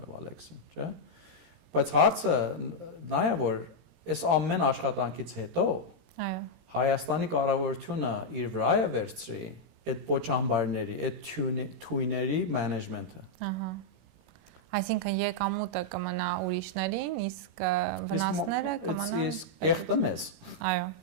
Վալեքսին, չէ՞։ Բայց հարցը նա է որ այս ամեն աշխատանքից հետո այո Հայաստանի կառավարությունը իր վրա է վերցրի այդ պոչամբարների, այդ թույների management-ը։ Ահա։ Այսինքն եկամուտը կմնա ուրիշներին, իսկ վնասները կմնան իսկ կեղտը մեզ։ Այո։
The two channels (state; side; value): late; left; 18 ms